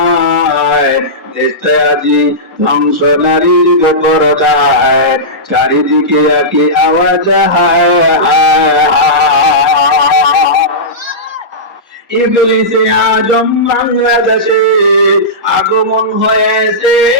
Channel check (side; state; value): both; normal; correlation -0.15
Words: দেশটা আজি ধ্বংস নারীর বেপরদায়, চারিদিকে একই আওয়াজ হায় হায় হায়। ইবলিসে আজম বাংলাদেশে আগমন হয়েছে